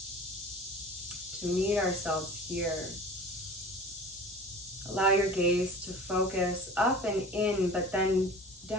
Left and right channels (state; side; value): normal; both; correlation 0.39